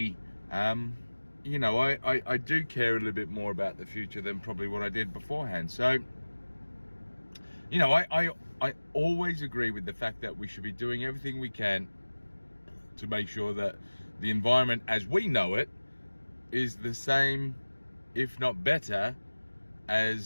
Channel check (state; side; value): inverted; both; correlation -1.00